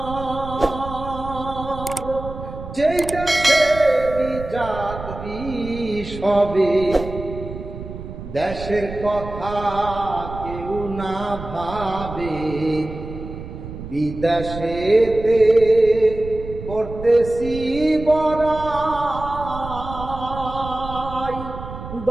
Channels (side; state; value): right; noise; rumble, 11 dB below the sound